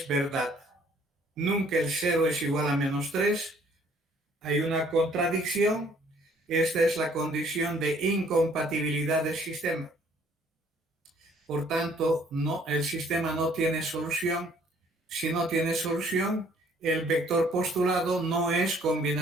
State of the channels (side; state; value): both; normal; correlation 0.60